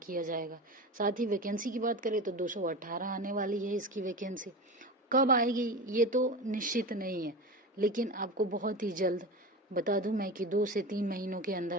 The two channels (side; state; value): both; normal; correlation 0.27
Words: जाएगा। साथ ही वैकेंसी की बात करें तो 218 आने वाली है इसकी वैकेंसी। कब आएगी ये तो निश्चित नहीं है, लेकिन आपको बहुत ही जल्द बता दूं मैं कि 2 से 3 महीनों के